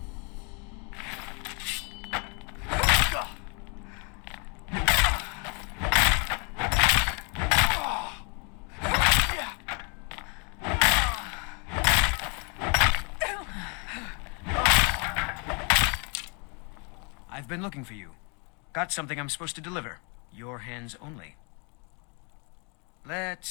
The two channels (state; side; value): quieter; right; 35.3 dB